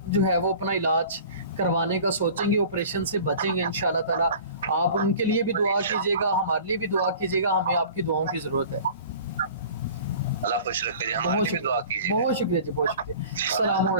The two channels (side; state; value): both; inverted; correlation -0.43